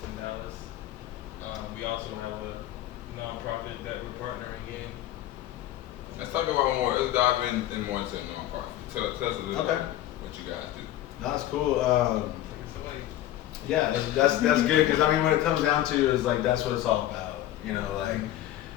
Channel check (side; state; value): right; quieter; 13.6 dB